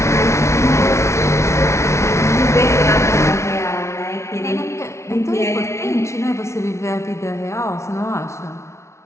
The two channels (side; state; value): right; late; 0.13 ms